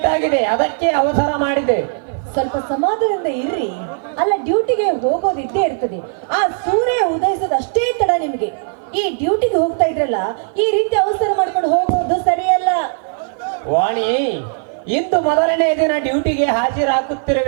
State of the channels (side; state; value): left; silent; 55 dB below the other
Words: ಆಗಿದೆ, ಅದಕ್ಕೆ ಅವಸರ ಮಾಡಿದೆ. ಸ್ವಲ್ಪ ಸಮಾಧಾನದಿಂದ ಇರ್ರಿ. ಅಲ್ಲ, ಡ್ಯೂಟಿಗೆ ಹೋಗೋದು ಇದ್ದೇ ಇರ್ತದೆ. ಆ ಸೂರ್ಯ ಉದಯಿಸೋದು ಅಷ್ಟೇ ತಡ ನಿಮ್ಗೆ. ಈ ಡ್ಯೂಟಿಗೆ ಹೋಗ್ತಾ ಇದ್ರಲ್ಲ, ಈ ರೀತಿ ಅವಸರ ಮಾಡ್ಕೊಂಡು ಹೋಗೋದು ಸರಿಯಲ್ಲ. ವಾಣಿ, ಇಂದು ಮೊದಲನೇ ದಿನ ಡ್ಯೂಟಿಗೆ